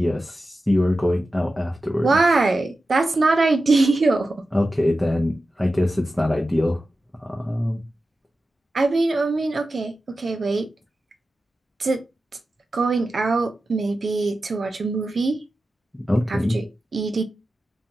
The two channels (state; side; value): normal; both; correlation 0.93